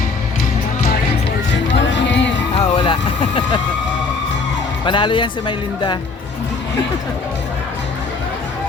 Okay. Wala. Panalo yan si Maylinda.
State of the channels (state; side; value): quieter; right; 4.4 dB